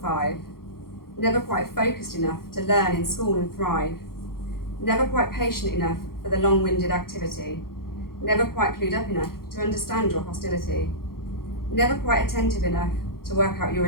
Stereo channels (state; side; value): late; right; 0.93 ms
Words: 5. Never quite focused enough to learn in school and thrive. Never quite patient enough for the long-winded activity. Never quite clued up enough to understand your hostility. Never quite attentive enough to work out your